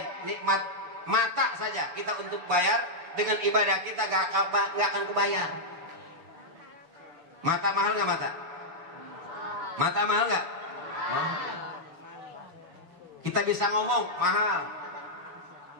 nikmat mata saja kita untuk bayar dengan ibadah kita gak akan kebayar. Mata mahal nggak mata? Mata mahal nggak? Kita bisa ngomong mahal,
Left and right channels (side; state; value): left; late; 6.9 ms